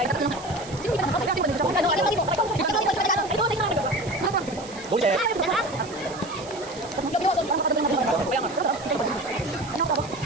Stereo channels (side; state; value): right; noise; hiss, 17 dB below the sound